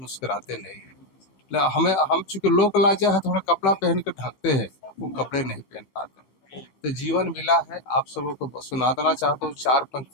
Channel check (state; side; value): late; right; 16 ms